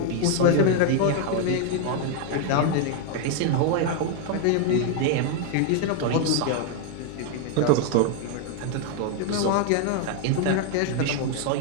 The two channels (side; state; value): both; different; correlation 0.01